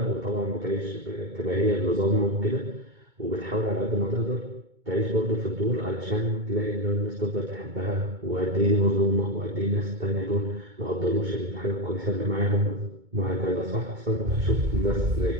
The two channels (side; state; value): left; late; 2.2 ms